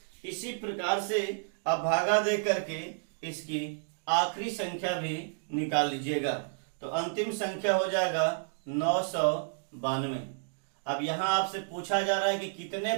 इसी प्रकार से अब भागा दे करके इसकी आखिरी संख्या भी निकाल लीजिएगा। तो अंतिम संख्या हो जाएगा 992। अब यहां आपसे पूछा जा रहा है कि कितने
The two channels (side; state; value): left; silent; digital silence